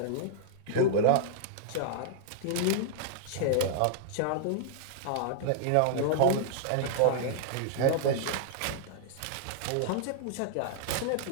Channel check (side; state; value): both; different; correlation -0.01